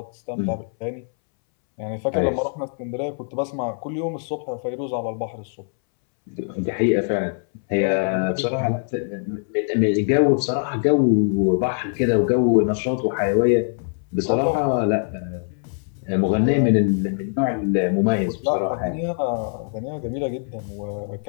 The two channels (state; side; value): silent; right; 64 dB below the other